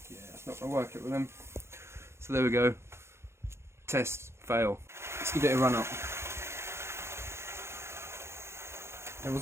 yeah, it's not going to work it with them. So there we go. Test, fail. Let's give it a run up. There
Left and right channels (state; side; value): late; left; 0.13 ms